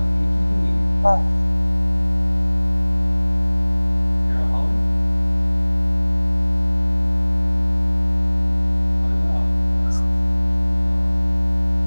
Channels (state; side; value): inverted; both; correlation -1.00